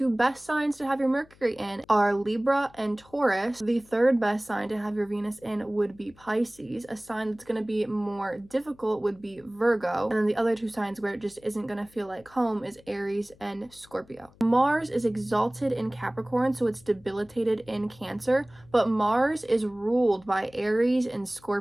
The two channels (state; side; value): noise; left; hum, 27 dB below the sound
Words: best signs to have your Mercury in are Libra and Taurus. The third best sign to have your Venus in would be Pisces. A sign that's going to be more difficult would be Virgo. And then the other two signs where it just isn't going to feel like home is Aries and Scorpio. Mars is exalted in Capricorn, so it's debilitated in Cancer, but Mars is ruled by Aries and